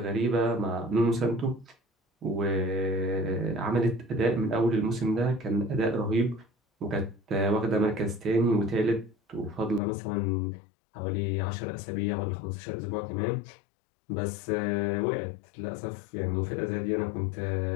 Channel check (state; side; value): drops out; right; at 9.8 s